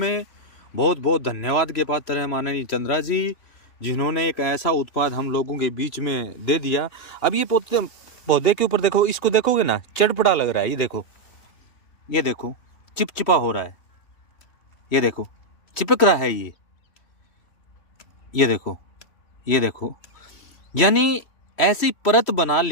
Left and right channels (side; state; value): right; late; 3.1 ms